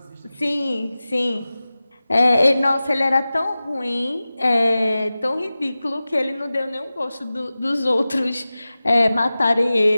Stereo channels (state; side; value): inverted; both; correlation -0.96